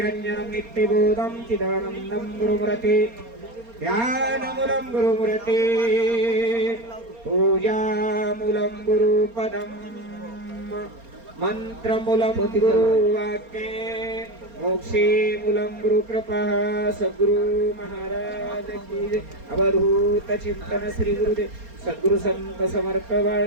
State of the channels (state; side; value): late; left; 4.3 ms